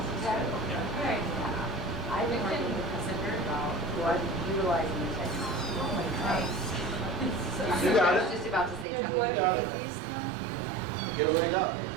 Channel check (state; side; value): drops out; left; at 8.8 s